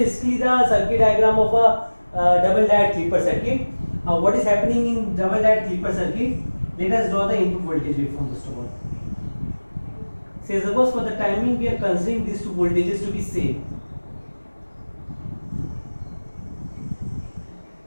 the circuit diagram of a double diode clipper circuit. What is happening in double diode clipper circuit? Let us draw the input voltage waveform first of all. Say suppose for the timing we are considering these two voltages to be same.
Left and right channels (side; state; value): both; inverted; correlation -1.00